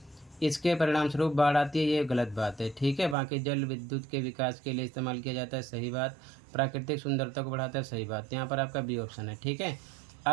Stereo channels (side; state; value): left; drops out; at 3.2 s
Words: इसके परिणाम स्वरूप बाढ़ आती है, ये गलत बात है। ठीक है, बाकी जल विद्युत के विकास के लिए इस्तेमाल किया जाता है, सही बात। प्राकृतिक सुंदरता को बढ़ाता है, सही बात। यहाँ पर आपका बी ऑप्शन है। ठीक है,